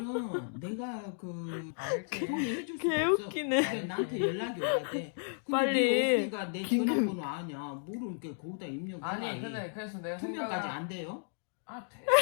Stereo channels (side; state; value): right; silent; digital silence